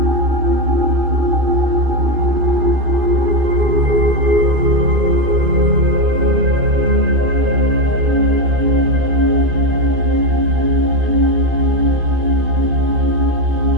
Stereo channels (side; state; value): left; late; 2.5 ms